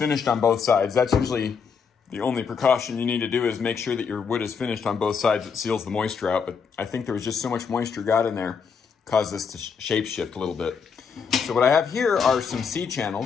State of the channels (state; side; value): quieter; right; 6.1 dB